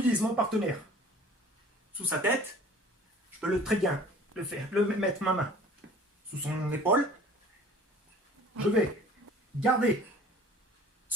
mon partenaire sous sa tête. Je peux très bien mettre ma main sous son épaule. Je vais garder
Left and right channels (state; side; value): normal; both; correlation 0.48